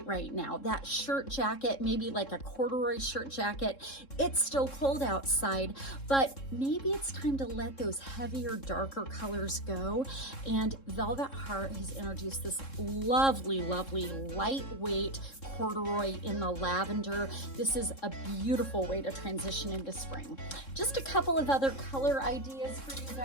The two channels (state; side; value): late; right; 3.7 ms